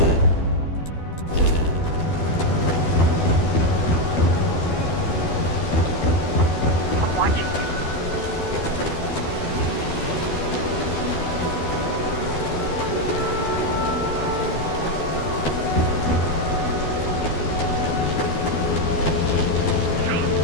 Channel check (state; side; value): late; right; 12 ms